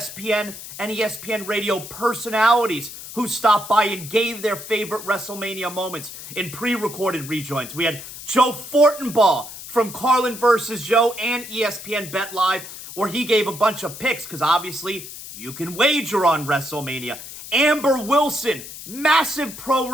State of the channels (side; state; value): left; noise; hiss, 12 dB below the sound